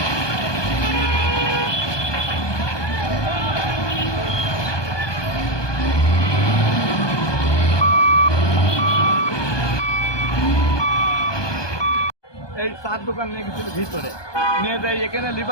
চার দোকান নিয়ে গেছিল ভিতরে নিয়ে যাই, এখানে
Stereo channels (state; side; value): late; right; 1.2 ms